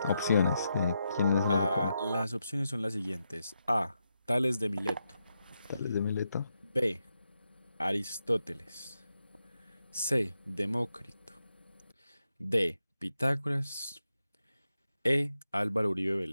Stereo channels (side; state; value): both; inverted; correlation -0.85